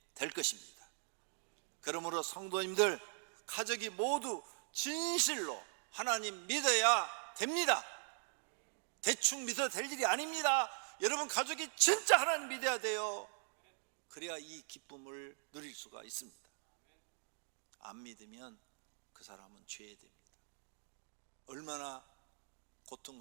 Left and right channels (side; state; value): left; silent; 51 dB below the other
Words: 될 것입니다. 그러므로 성도님들, 가족이 모두 진실로 하나님 믿어야 됩니다. 대충 믿어도 될 일이 아닙니다. 여러분 가족이 진짜 하나님 믿어야 돼요. 그래야 이 기쁨을 누릴 수가 있습니다. 안 믿으면 그 사람은 죄됩니다. 얼마나